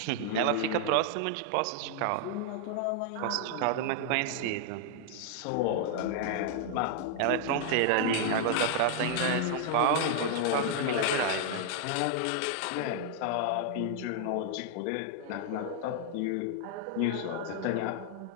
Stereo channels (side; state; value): both; different; correlation 0.00